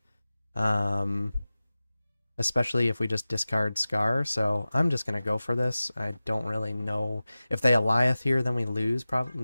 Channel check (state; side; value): inverted; both; correlation -0.96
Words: especially if we just discard Scar. So I'm just gonna go for this. I don't really know if they Eliath here, then we lose.